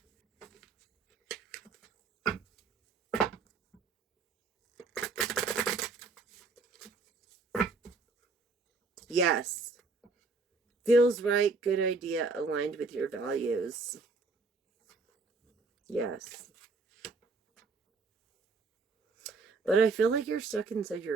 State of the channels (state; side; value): quieter; left; 4.0 dB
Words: yes. Feels right, good idea, aligned with your values. Yes. But I feel like you're stuck inside